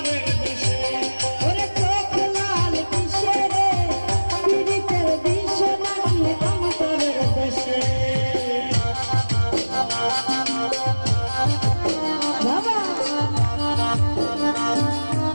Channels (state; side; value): inverted; both; correlation -1.00